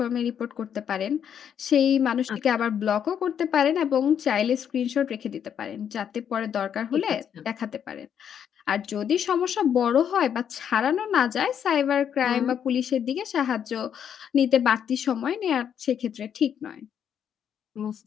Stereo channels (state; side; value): quieter; right; 8.6 dB